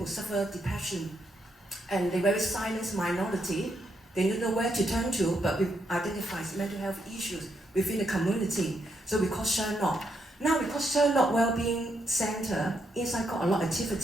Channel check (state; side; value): normal; both; correlation 0.79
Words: suffer depression, and they're very silent minority. They don't know where to turn to, but we identify mental health issues within the community. So we call Sherlock. Now we call Sherlock Wellbeing Center. Inside got a lot of